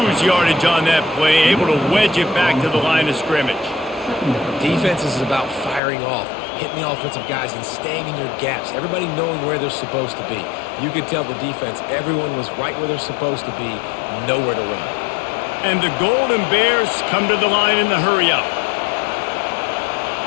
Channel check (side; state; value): right; drops out; at 5.8 s